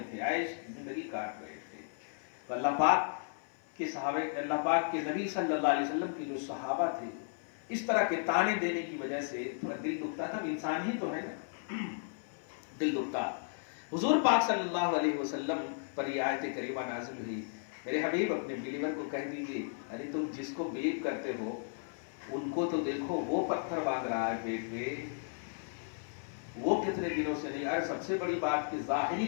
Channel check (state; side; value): silent; right; 55 dB below the other